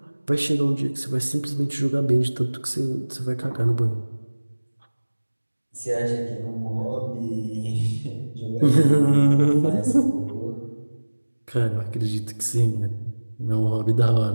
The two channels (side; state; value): both; inverted; correlation -1.00